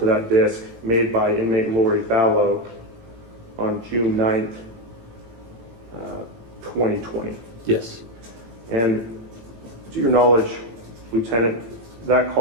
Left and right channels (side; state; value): left; late; 18 ms